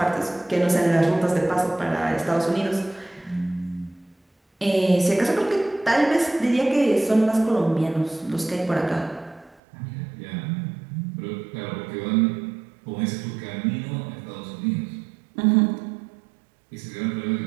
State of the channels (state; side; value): drops out; left; at 9.6 s